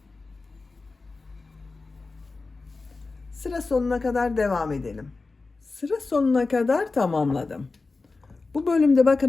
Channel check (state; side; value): quieter; right; 3.8 dB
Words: Sıra sonuna kadar devam edelim. Sıra sonuna kadar tamamladım. Bu bölümde